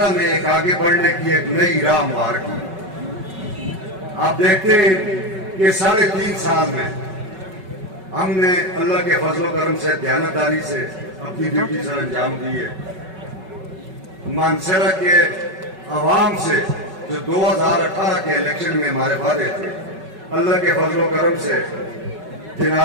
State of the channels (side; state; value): left; late; 5.3 ms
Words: میں ایک آگے بڑھنے کی ایک نئی راہ ہموار کی۔ آپ دیکھتے ہیں کہ 3.5 سال میں ہم نے اللہ کے فضل و کرم سے، دیانتداری سے اپنی ڈیوٹی سر انجام دی ہے۔ مانسہرہ کے عوام سے جو 2018 کے الیکشن میں ہمارے وعدے تھے، اللہ کے فضل و کرم سے،